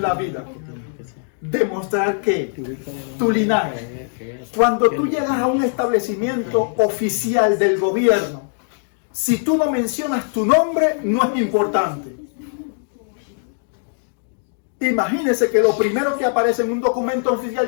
la vida. Demostrar que tu linaje, cuando tú llegas a un establecimiento oficial del gobierno, si tú no mencionas tu nombre, no es importante. Imagínese que lo primero que aparece en un documento oficial,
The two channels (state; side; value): silent; right; digital silence